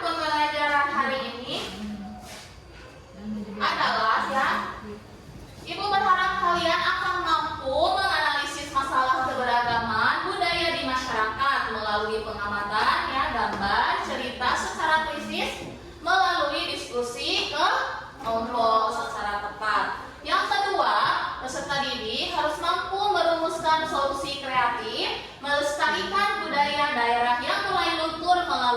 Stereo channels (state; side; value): identical; both; correlation 1.00